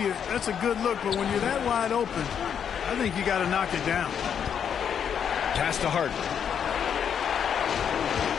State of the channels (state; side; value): quieter; right; 8.0 dB